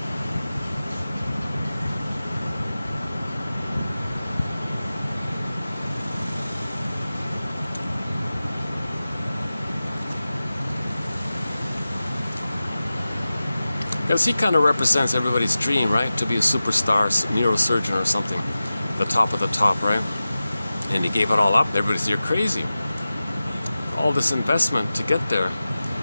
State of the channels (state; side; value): inverted; both; correlation -0.95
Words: Because he kind of represents everybody's dream, right? To be a superstar neurosurgeon or something, the top of the top, right? And he gave it all up. Everybody said, you're crazy. All this investment to get there,